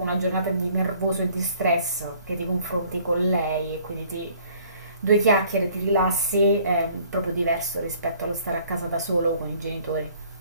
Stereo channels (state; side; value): inverted; both; correlation -0.57